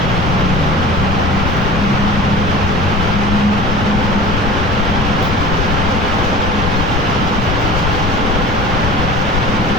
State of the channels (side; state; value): left; noise; rumble, 2 dB below the sound